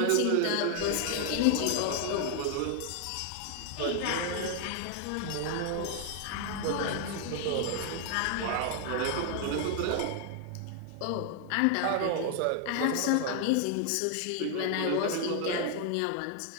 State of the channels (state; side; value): different; both; correlation 0.00